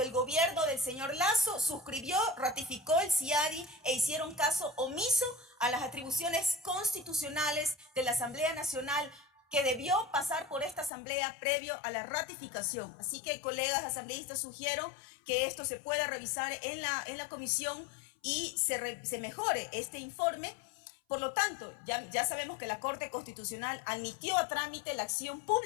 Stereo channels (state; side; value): drops out; right; at 10.9 s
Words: el gobierno del señor Lasso suscribió, ratificó el CIADI e hicieron caso omiso a las atribuciones constitucionales de la Asamblea Nacional, que debió pasar por esta asamblea previo a la ratificación. Así que, colegas asambleístas, sugiero que esto se pueda revisar en la comisión y se mejore este informe. Por lo tanto, ya sabemos que la Corte Constitucional admitió a trámite la acción